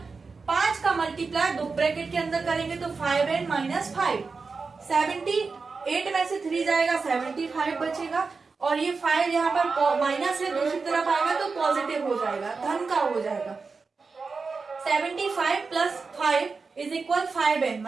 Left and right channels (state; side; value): quieter; left; 4.5 dB